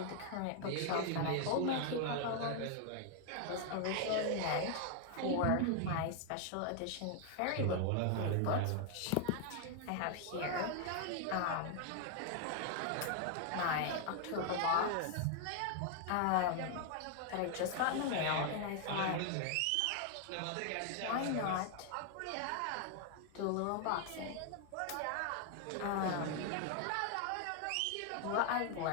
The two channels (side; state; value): both; different; correlation 0.00